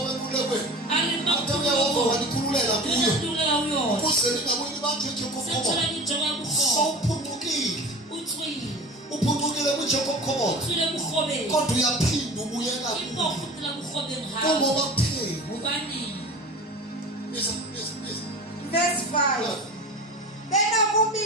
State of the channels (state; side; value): normal; both; correlation 0.36